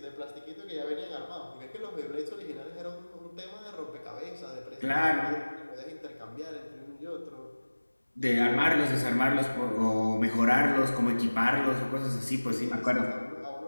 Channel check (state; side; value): inverted; both; correlation -1.00